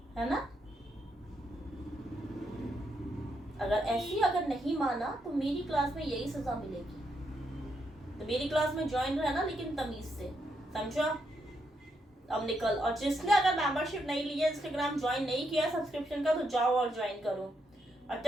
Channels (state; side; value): normal; both; correlation 0.79